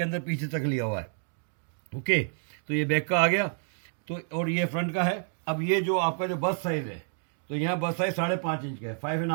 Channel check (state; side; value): silent; left; 59 dB below the other